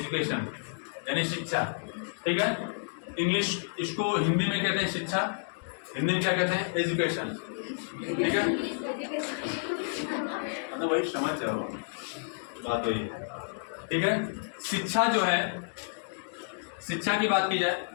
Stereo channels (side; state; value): right; silent; digital silence